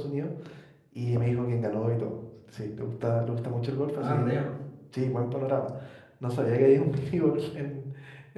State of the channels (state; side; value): identical; both; correlation 1.00